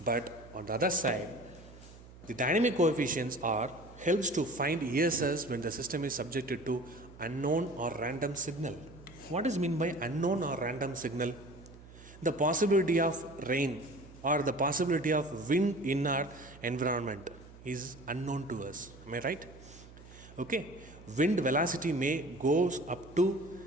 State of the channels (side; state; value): right; noise; hum, 19 dB below the sound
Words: But on the other side, the dynamic coefficients are helps to find ESS when the system is subjected to unknown or random signal. What is meant by unknown or random signal? The possibility of rain or the possibility of wind in our environment is unknown to us. Am I right? Okay. Wind velocity may goes up to